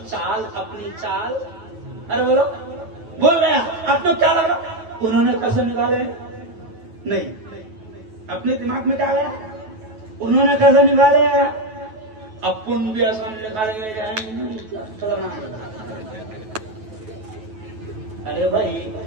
चाल, अपनी चाल। अरे बोल रहे हैं, आपको क्या लगा? उन्होंने कसम निकाले नहीं, अपने दिमाग में क्या गया? उन्होंने कसम निकाले, अपन भी असम निकालेंगे। अरे भाई,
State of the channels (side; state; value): left; late; 9.3 ms